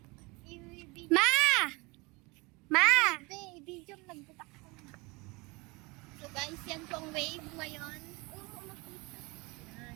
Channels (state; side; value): quieter; left; 26.2 dB